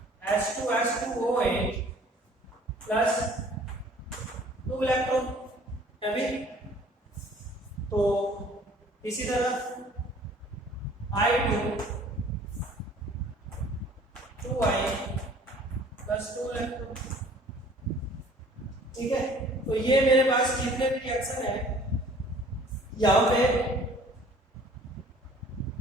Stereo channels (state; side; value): normal; both; correlation 0.52